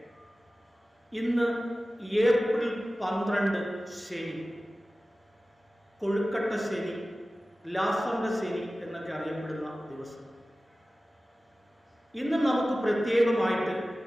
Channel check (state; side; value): normal; both; correlation 0.96